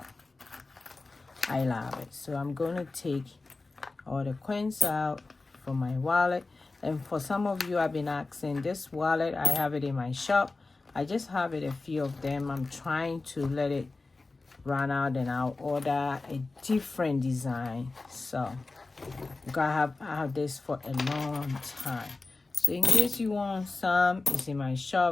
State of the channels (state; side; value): quieter; right; 3.5 dB